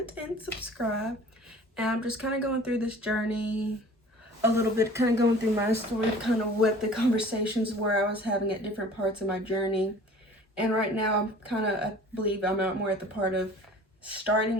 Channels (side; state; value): both; normal; correlation 0.46